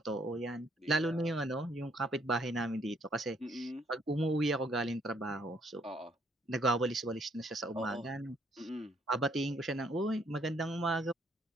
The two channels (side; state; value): both; normal; correlation 0.68